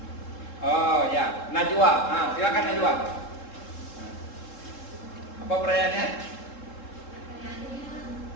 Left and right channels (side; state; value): right; late; 3.7 ms